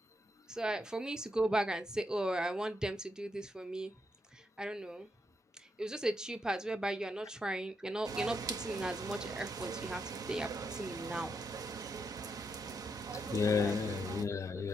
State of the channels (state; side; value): normal; both; correlation 0.80